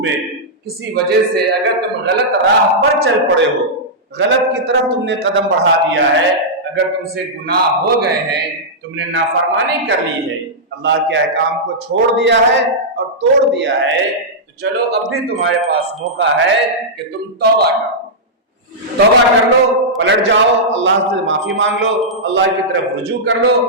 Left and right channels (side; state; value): both; normal; correlation -0.10